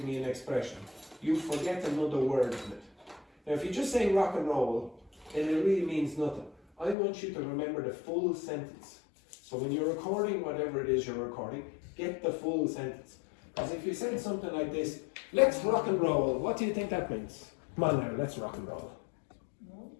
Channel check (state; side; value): drops out; right; at 7.0 s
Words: me an expression, you forget another word in it. Now, if you just say rock and roll, then it really means nothing. I want you to remember the full sentence. So when you're recording whatever it is you're recording, get the full sentence. Because if you said something like this, let's rock and roll, what do you think that means? Come on now, let's rock and roll.